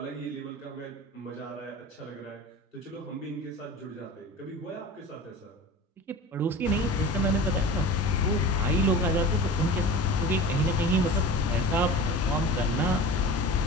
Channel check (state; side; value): normal; both; correlation 0.35